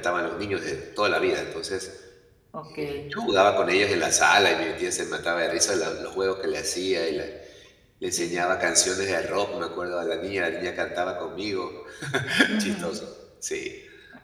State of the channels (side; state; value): both; identical; correlation 1.00